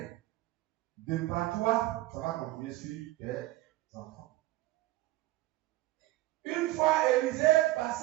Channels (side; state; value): left; quieter; 17.3 dB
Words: de par toi, ça va continuer sur tes enfants. Une fois, Élisée